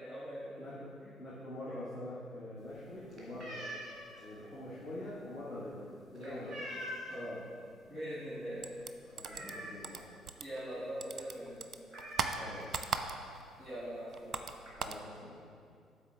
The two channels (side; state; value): both; normal; correlation 0.66